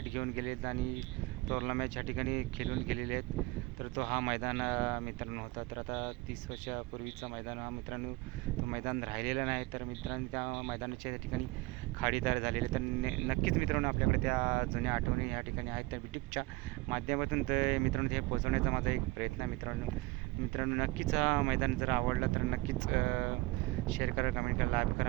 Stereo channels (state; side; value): quieter; left; 22.0 dB